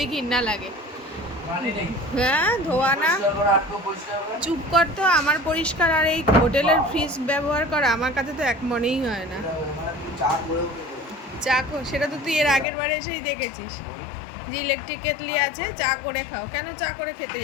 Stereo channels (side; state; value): right; drops out; at 12.7 s